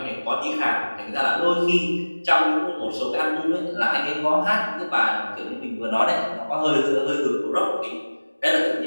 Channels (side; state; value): both; inverted; correlation -1.00